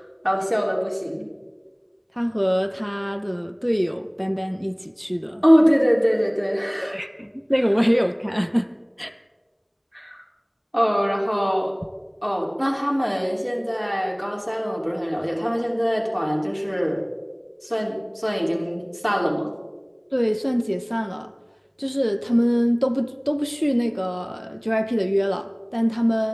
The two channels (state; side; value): identical; both; correlation 1.00